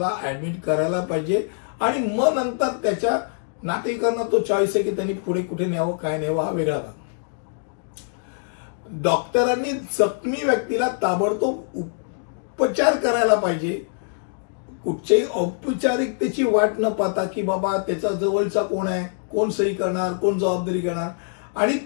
ऍडमिट करायला पाहिजे आणि मग नंतर त्याच्या नातेवाईकांना तो चॉईस आहे की त्यांनी पुढे कुठे न्यावं काय न्यावं हा वेगळा भाग. डॉक्टरांनी जखमी व्यक्तीला ताबडतोब उपचार करायला पाहिजे. कुठच्याही औपचारिकतेची वाट न पाहता की बाबा त्याचा जवळचा कोण आहे, कोण सही करणार, कोण जबाबदारी घेणार. आणि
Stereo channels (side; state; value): right; silent; digital silence